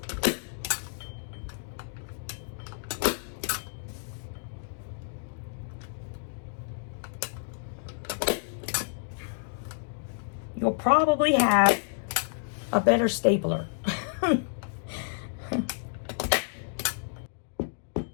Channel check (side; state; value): right; silent; digital silence